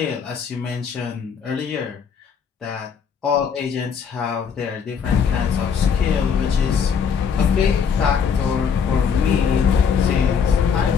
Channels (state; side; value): quieter; right; 6.7 dB